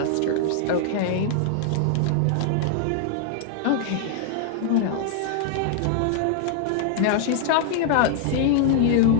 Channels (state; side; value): different; both; correlation 0.00